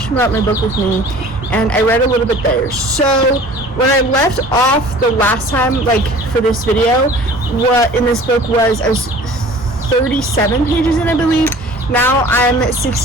my book with me, and I read a little bit there. So, when I left off the last time, like, for this video, what in this book was, I was 37 pages in, I believe. Now I'm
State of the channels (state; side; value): normal; both; correlation 0.46